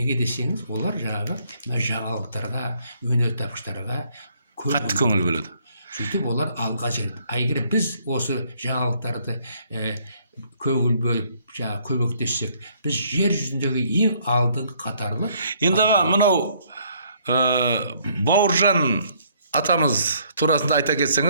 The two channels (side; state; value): both; inverted; correlation -0.65